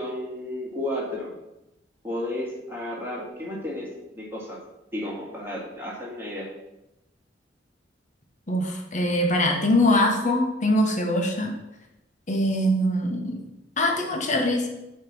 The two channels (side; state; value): both; normal; correlation 0.48